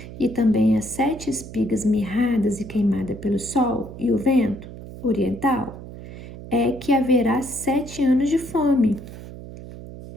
E também as 7 espigas mirradas e queimadas pelo sol e o vento oriental é que haverá 7 anos de fome.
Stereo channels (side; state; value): right; noise; hum, 13 dB below the sound